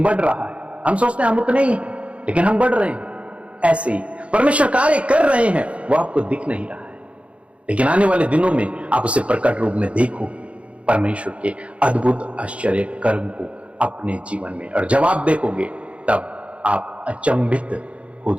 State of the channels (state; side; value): late; left; 0.062 ms